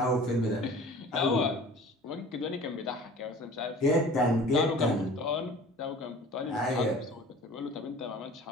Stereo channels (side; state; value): both; normal; correlation 0.45